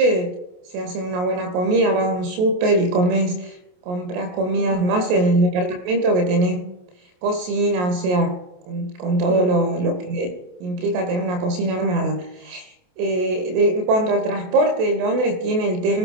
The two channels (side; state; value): left; late; 28 ms